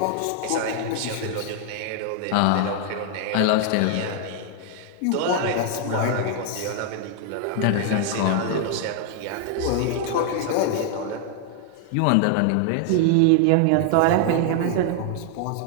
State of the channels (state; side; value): different; both; correlation 0.00